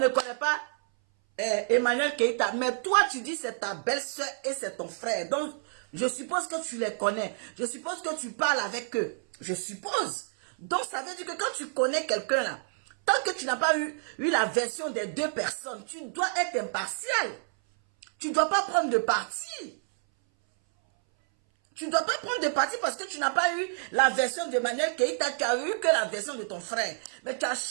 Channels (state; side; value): silent; left; 58 dB below the other